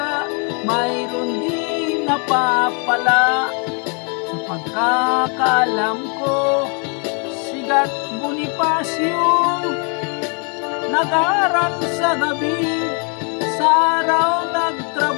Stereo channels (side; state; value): right; quieter; 37.2 dB